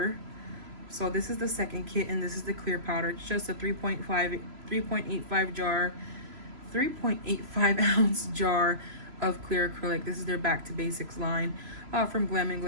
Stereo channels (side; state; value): left; late; 3.0 ms